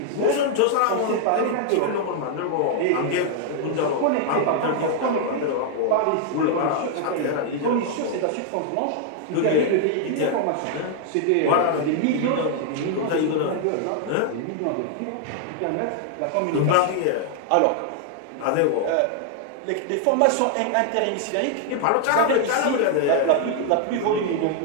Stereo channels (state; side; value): different; both; correlation 0.00